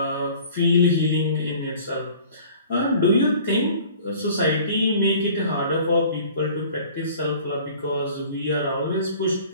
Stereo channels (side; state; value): both; inverted; correlation -0.48